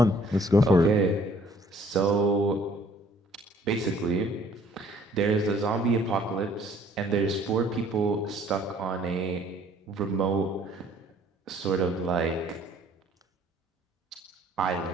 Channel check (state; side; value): normal; both; correlation 0.58